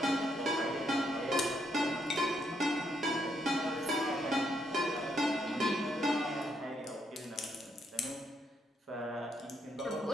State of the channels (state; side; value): normal; both; correlation 0.75